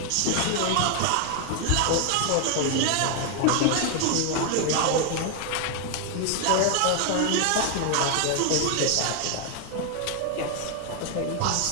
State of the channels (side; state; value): both; different; correlation 0.00